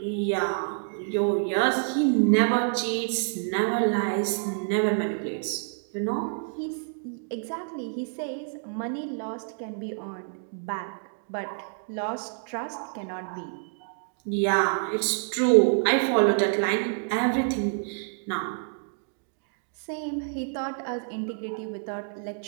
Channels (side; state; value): left; silent; digital silence